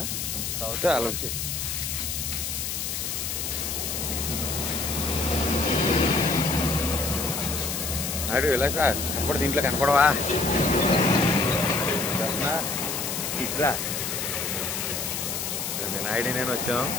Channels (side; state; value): left; noise; hiss, 3 dB below the sound